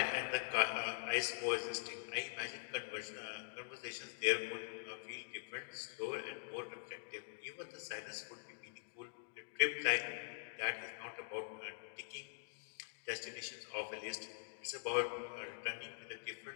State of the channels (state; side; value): silent; right; digital silence